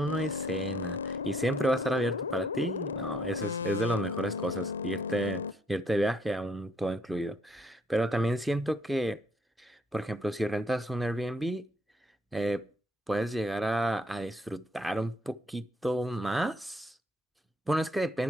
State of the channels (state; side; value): normal; both; correlation 0.68